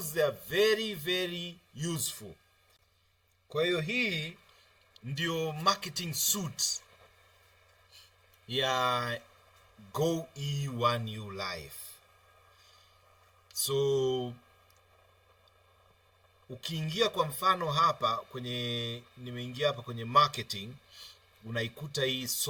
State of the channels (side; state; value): both; identical; correlation 1.00